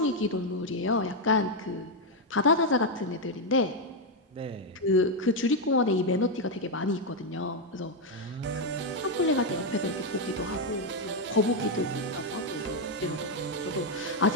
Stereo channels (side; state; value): both; normal; correlation 0.02